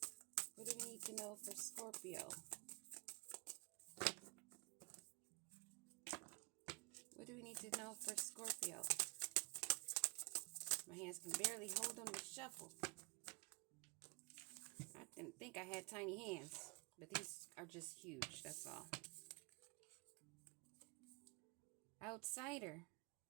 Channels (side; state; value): left; quieter; 30.1 dB